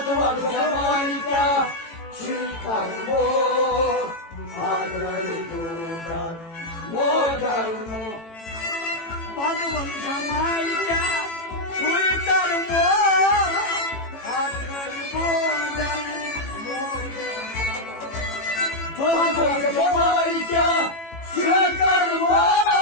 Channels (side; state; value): right; late; 18 ms